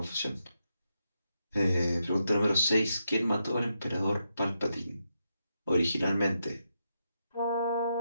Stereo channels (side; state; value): both; inverted; correlation -0.84